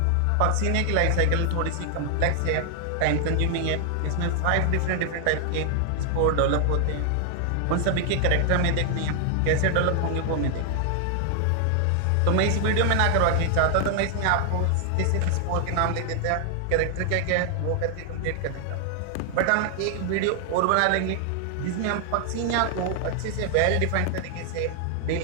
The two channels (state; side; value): different; both; correlation 0.00